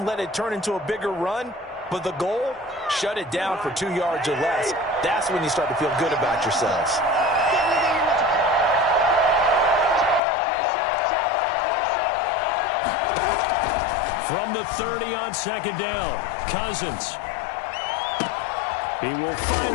let it turn into a bigger run, but the goal, shut it down for 2 yards or less. That's when you start to feel good about yourselves. From the 30 on 2nd down, Cousins. He will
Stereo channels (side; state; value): right; drops out; at 10.2 s